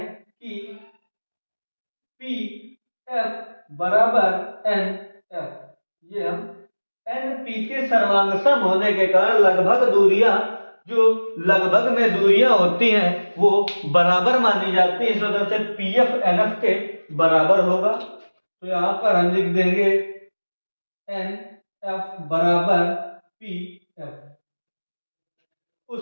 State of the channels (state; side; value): inverted; both; correlation -1.00